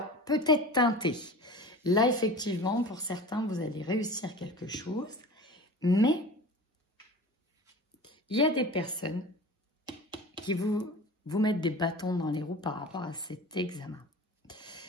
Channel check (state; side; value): normal; both; correlation 0.37